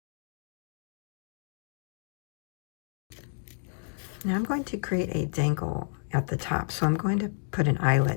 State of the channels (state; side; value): silent; right; digital silence